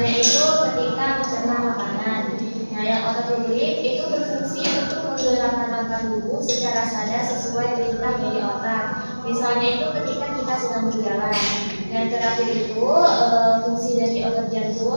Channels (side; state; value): both; inverted; correlation -1.00